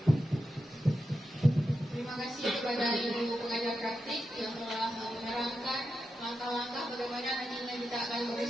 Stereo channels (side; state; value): both; normal; correlation 0.89